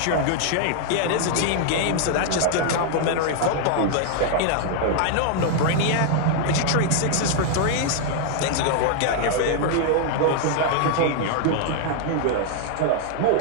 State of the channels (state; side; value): different; both; correlation 0.00